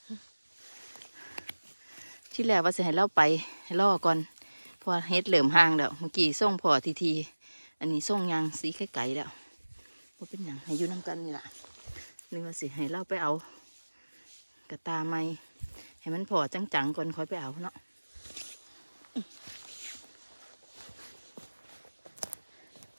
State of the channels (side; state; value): both; inverted; correlation -1.00